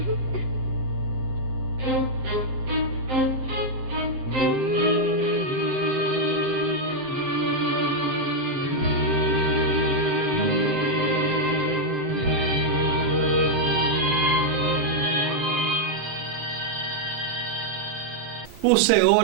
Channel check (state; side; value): late; left; 7.6 ms